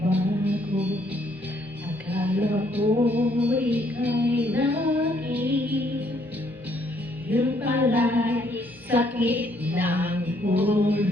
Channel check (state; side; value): normal; both; correlation 0.68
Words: Akala ko ika'y naging, yun pala'y sakit ng